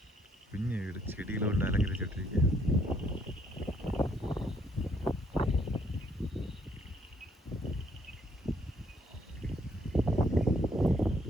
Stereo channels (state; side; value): normal; both; correlation 0.68